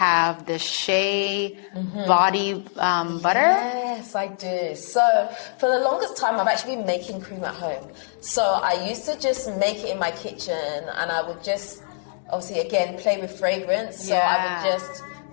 the shea body butter? Yes, I do. So for the longest time, I've actually been making cream at home. So I used to just make it in my kitchen and I would just, obviously, again, play with fragrance. So I would just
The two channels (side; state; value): right; silent; 63 dB below the other